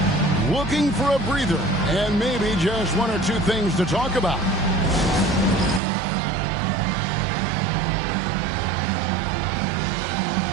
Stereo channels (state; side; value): drops out; left; at 5.8 s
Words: Looking for a breather and maybe just 1 or 2 things to talk about.